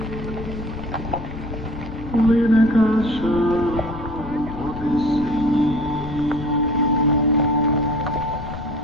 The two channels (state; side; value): noise; left; rumble, 11 dB below the sound